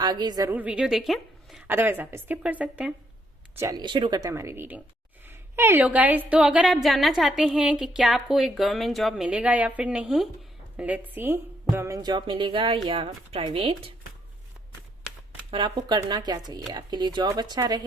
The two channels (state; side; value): normal; both; correlation 0.73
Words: जरूर वीडियो देखें, अदरवाइज आप स्किप कर सकते हैं। चलिए शुरू करते हैं हमारी रीडिंग। हेलो गाइज, तो अगर आप जानना चाहते हैं कि क्या आपको एक गवर्नमेंट जॉब मिलेगा या फिर नहीं, लेट्स सी, गवर्नमेंट जॉब मिलेगा या प्राइवेट, और आपको करना क्या चाहिए, आपके लिए जॉब अच्छा